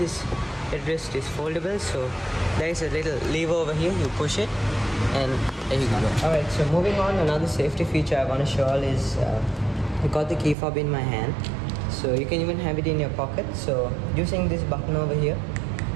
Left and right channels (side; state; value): left; drops out; at 10.6 s